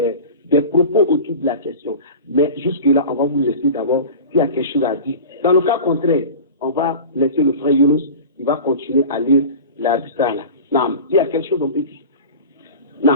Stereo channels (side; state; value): both; inverted; correlation -0.34